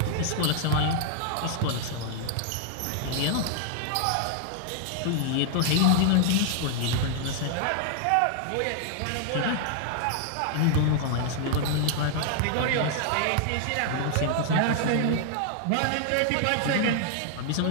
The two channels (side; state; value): both; different; correlation 0.00